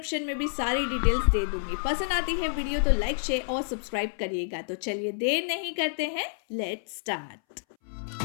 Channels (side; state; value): right; silent; 59 dB below the other